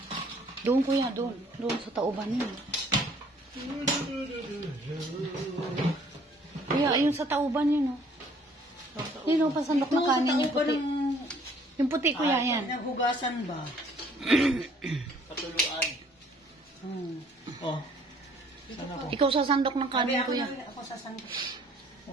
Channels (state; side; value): normal; both; correlation 0.59